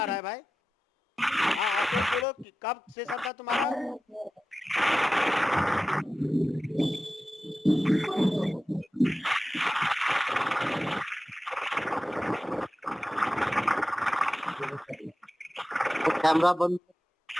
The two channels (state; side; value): normal; both; correlation 0.94